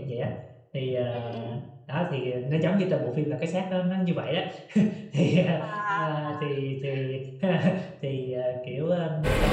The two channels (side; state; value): both; identical; correlation 1.00